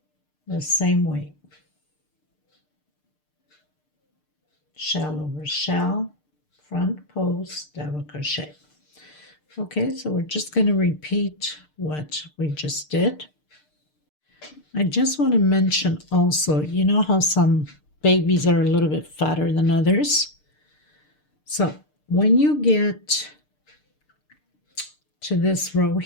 the same way. Shell over shell, front post, double crochet. Okay, so we're just going to repeat what we just did. I just want to mention also, you know how some babies are a little bit fatter than others? So when you get to this row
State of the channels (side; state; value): right; late; 6.6 ms